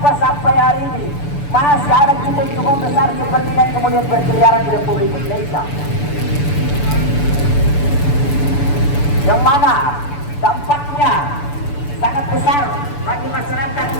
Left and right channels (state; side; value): late; right; 6.9 ms